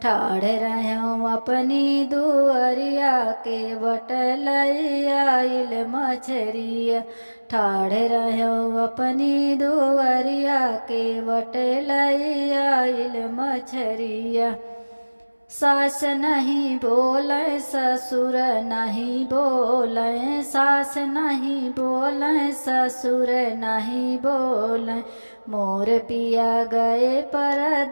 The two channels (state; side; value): inverted; both; correlation -1.00